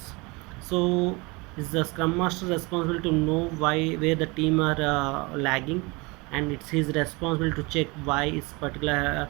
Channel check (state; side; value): quieter; left; 26.2 dB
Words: So is the scrum master responsible to know why where the team are lagging, and it's his responsibility to check why this particular